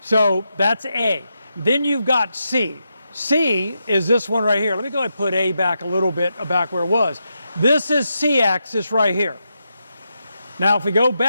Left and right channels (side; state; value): both; inverted; correlation -0.85